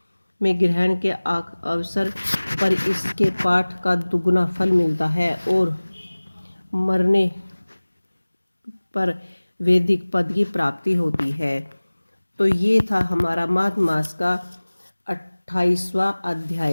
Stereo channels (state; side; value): inverted; both; correlation -1.00